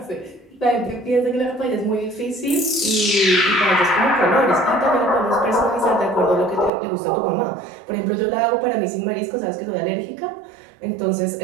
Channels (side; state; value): left; drops out; at 6.7 s